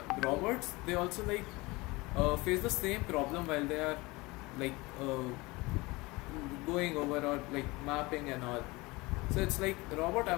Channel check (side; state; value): right; quieter; 23.0 dB